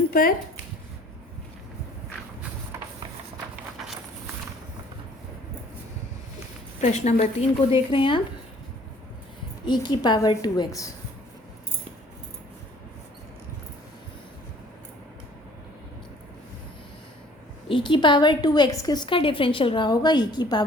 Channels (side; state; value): both; normal; correlation 0.55